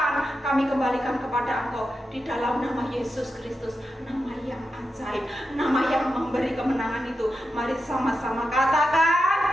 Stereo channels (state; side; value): normal; both; correlation 0.89